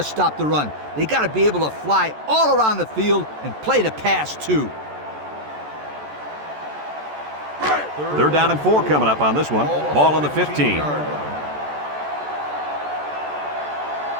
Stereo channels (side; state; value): left; late; 14 ms